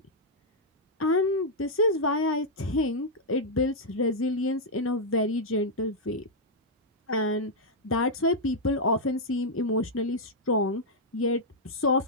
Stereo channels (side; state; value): both; normal; correlation -0.05